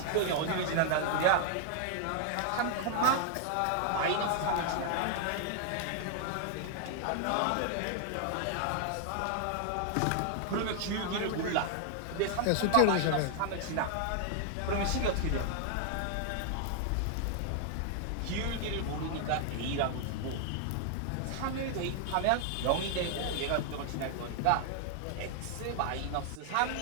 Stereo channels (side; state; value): both; different; correlation 0.00